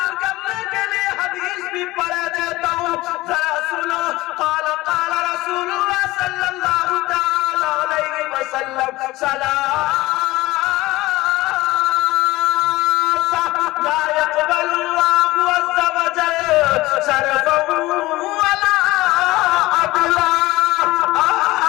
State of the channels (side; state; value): right; quieter; 19.1 dB